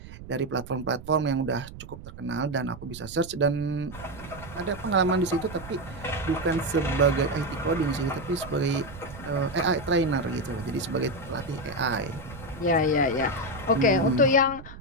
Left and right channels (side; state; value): right; noise; rumble, 15 dB below the sound